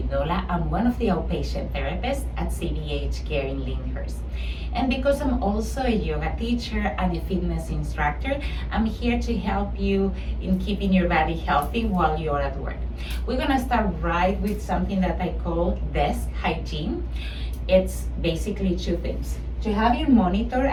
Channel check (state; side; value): identical; both; correlation 1.00